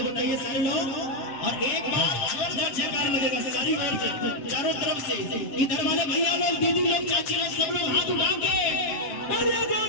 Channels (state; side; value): late; right; 7.5 ms